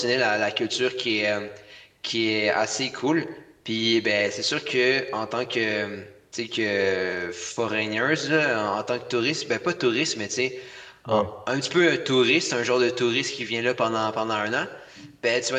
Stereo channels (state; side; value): identical; both; correlation 1.00